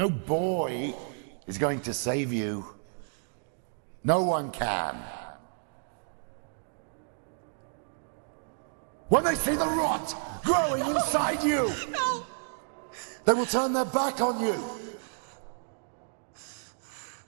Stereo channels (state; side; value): silent; left; digital silence